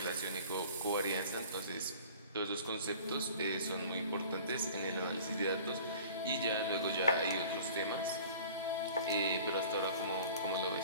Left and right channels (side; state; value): both; inverted; correlation -0.45